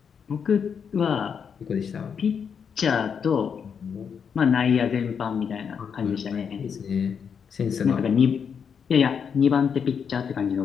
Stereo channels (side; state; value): right; quieter; 6.9 dB